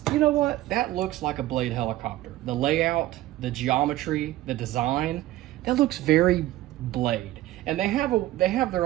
you know what, that looks like a Blade helicopter. The layout, the geometry, the design, that looks very Blade. And they have their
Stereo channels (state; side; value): quieter; left; 15.7 dB